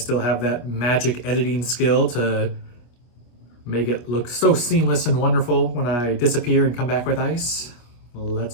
have that magic editing skill to make it look so seamless and wonderful when I disappear and come back with ice.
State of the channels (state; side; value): late; right; 25 ms